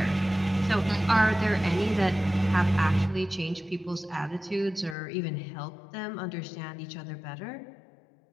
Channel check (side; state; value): right; drops out; at 5.0 s